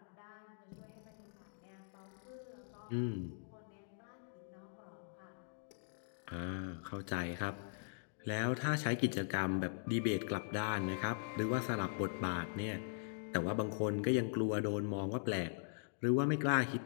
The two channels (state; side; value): silent; right; digital silence